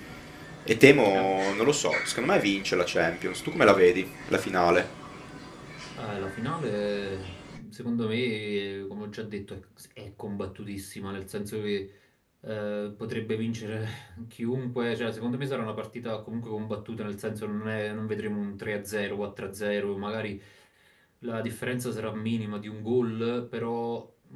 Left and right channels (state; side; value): identical; both; correlation 1.00